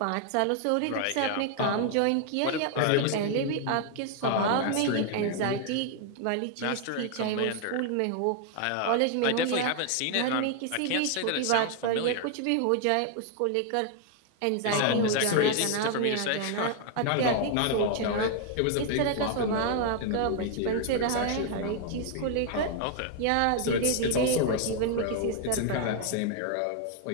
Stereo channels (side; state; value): both; different; correlation 0.00